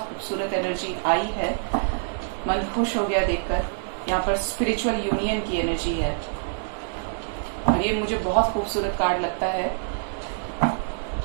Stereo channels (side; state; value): left; silent; digital silence